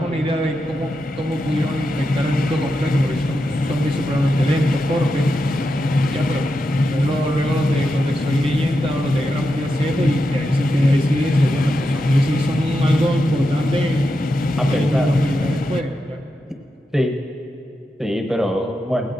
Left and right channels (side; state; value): both; normal; correlation 0.87